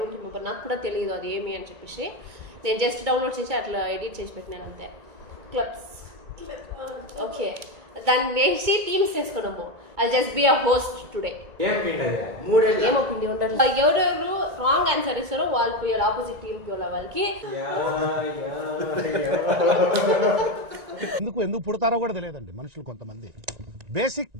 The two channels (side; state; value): left; late; 1.9 ms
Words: రిమెంబర్, నాకు కూడా తెలియదు అది ఏమి అని చెప్పేసి. నేను జస్ట్ డౌన్లోడ్ చేసి అట్లా ఎడిట్ చేసి పెట్టినాను అంతే. క్లబ్స్ ఓకే, దాన్ని వేసి టీమ్స్ చేసుకున్నాము. I just be a host today. ఏమో పిండి ఉండాలి. ఎవరెవరు రాంగ్ ఆన్సర్ ఇస్తారో వాళ్ళు పోయాలి, ఆపోజిట్ టీమ్ పోయాలి వాళ్ళకి. ఎందుకు పుడతారో కూడా తెలియదండి మనుషులు. కొంతమంది